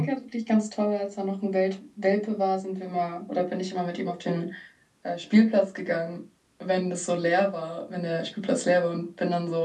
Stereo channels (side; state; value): both; identical; correlation 1.00